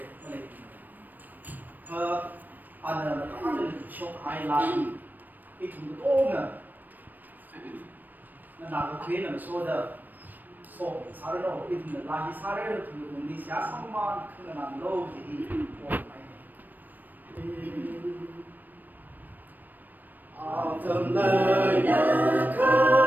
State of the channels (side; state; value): left; late; 0.088 ms